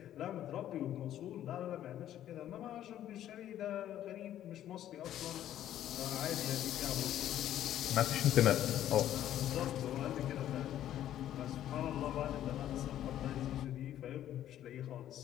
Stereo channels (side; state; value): right; quieter; 11.8 dB